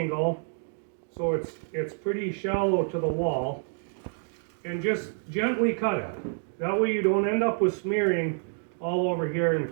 so it's pretty shallow to the wall, and just gently cut it. That way you don't end up with smearing all over here, and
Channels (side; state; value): left; silent; 58 dB below the other